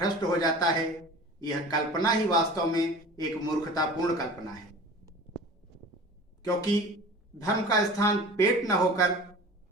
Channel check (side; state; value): both; normal; correlation 0.40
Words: हो जाता है। यह कल्पना ही वास्तव में एक मूर्खतापूर्ण कल्पना है, क्योंकि धर्म का स्थान पेट न होकर